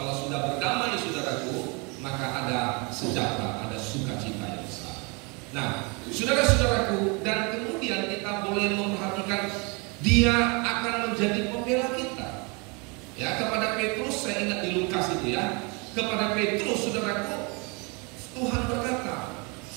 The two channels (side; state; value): left; quieter; 30.8 dB